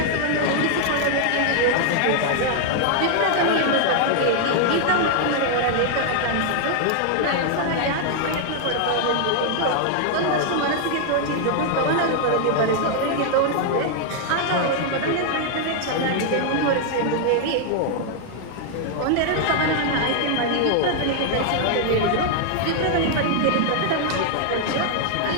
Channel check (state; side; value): different; both; correlation 0.00